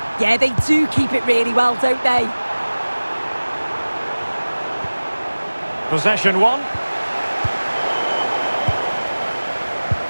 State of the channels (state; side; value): inverted; both; correlation -1.00